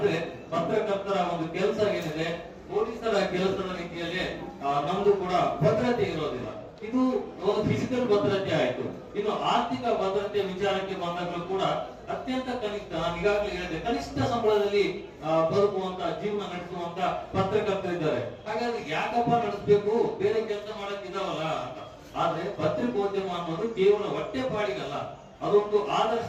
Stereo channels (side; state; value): both; identical; correlation 1.00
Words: ಪತ್ರಕರ್ತರ ಒಂದು ಕೆಲಸ ಏನಿದೆ, ಪೊಲೀಸರ ಕೆಲಸದ ರೀತಿಯಲ್ಲಿ ನಮ್ದು ಕೂಡ ಭದ್ರತೆ ಇರೋದಿಲ್ಲ. ಇದು ಒಂದು ಫಿಸಿಕಲ್ ಭದ್ರತೆ ಆಯ್ತು. ಇನ್ನು ಆರ್ಥಿಕ ಭದ್ರತೆ ವಿಚಾರಕ್ಕೆ ಬಂದಾಗಲೂ ಕೂಡ ಅತ್ಯಂತ ಕನಿಷ್ಠ, ನಾನು ಈಗಾಗಲೇ ಹೇಳಿದೆ, ಕನಿಷ್ಠ ಸಂಬಳದಲ್ಲಿ ಬದುಕುವಂತ ಜೀವನ ನಡೆಸುವಂತ ಪತ್ರಕರ್ತರಿದ್ದಾರೆ. ಹಾಗಾಗಿ ಯಾಕಪ್ಪ ನಡೆಸಬೇಕು, ಬೇರೆ ಕೆಲಸ ಮಾಡಕ್ ಇದಾವಲ್ಲ ಅಂತ. ಆದ್ರೆ ಪತ್ರಿಕೋದ್ಯಮ ಅನ್ನೋದು ಕೇವಲ ಹೊಟ್ಟೆ ಪಾಡಿಗಲ್ಲ, ಅದೊಂದು